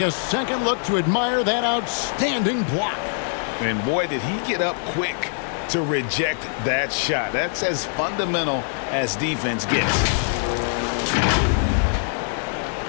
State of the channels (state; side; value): silent; right; 61 dB below the other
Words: second look to admire that outstanding block. And boy, did he get up quick to reject that shot. That's as fundamental as defense gets.